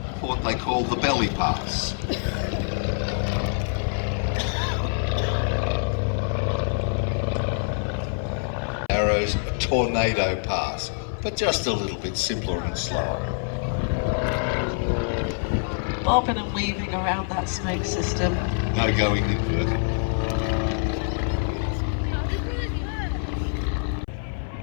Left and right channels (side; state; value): right; silent; 59 dB below the other